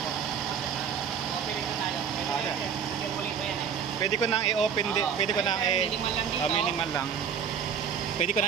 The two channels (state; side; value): quieter; left; 7.4 dB